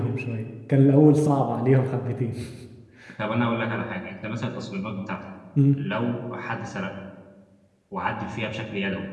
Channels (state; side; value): identical; both; correlation 1.00